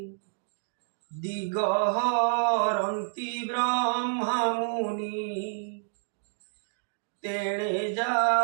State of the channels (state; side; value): silent; left; digital silence